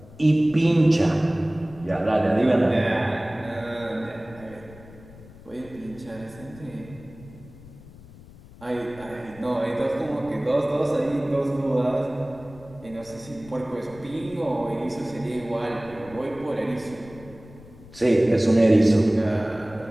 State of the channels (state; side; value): noise; left; rumble, 20 dB below the sound